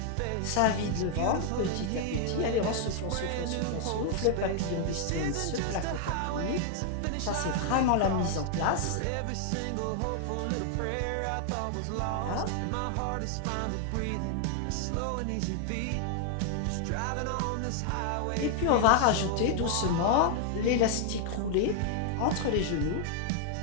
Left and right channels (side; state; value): both; different; correlation 0.00